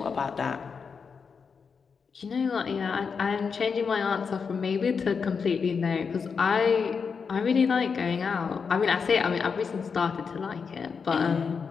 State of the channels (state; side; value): quieter; right; 5.7 dB